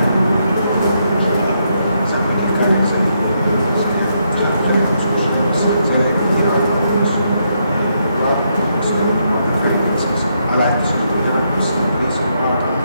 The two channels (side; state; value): both; inverted; correlation -0.78